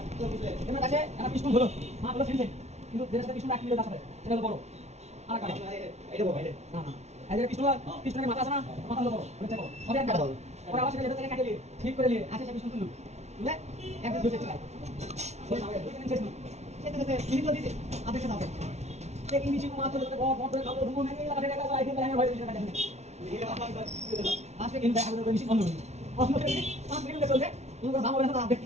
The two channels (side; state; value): left; late; 0.32 ms